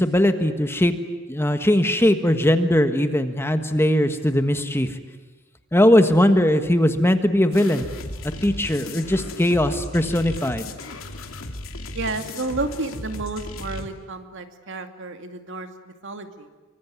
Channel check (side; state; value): both; normal; correlation 0.83